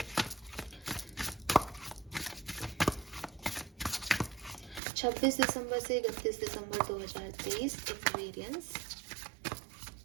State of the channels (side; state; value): left; drops out; at 4.8 s